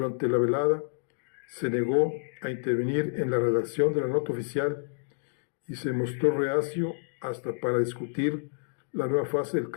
la velada, se negó a intervenir en la redacción de la nota oficial y se mostró reacio hasta para discutir la nueva fase del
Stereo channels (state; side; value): silent; right; digital silence